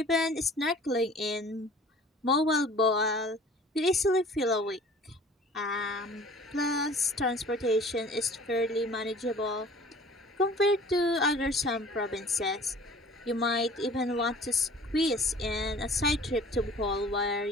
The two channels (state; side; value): normal; both; correlation 0.47